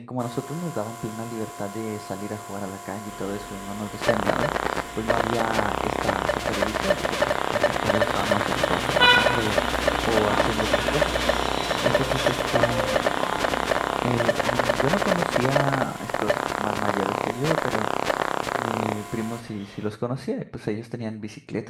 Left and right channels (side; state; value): both; identical; correlation 1.00